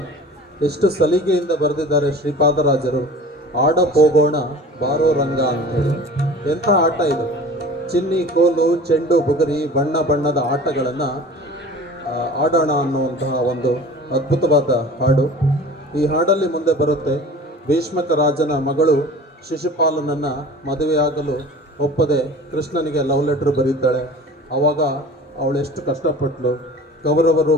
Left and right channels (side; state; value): both; normal; correlation 0.41